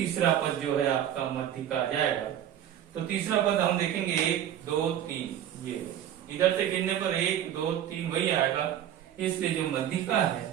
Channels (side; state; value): left; quieter; 10.7 dB